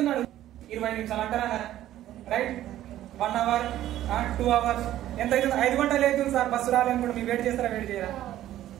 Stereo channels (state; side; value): quieter; left; 13.2 dB